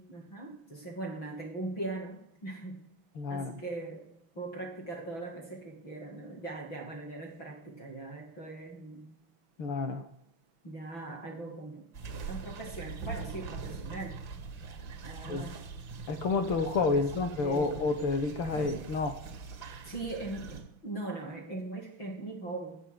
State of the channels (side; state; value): right; late; 6.0 ms